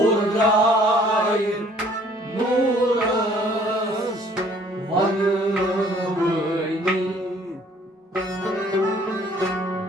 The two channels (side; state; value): both; normal; correlation 0.58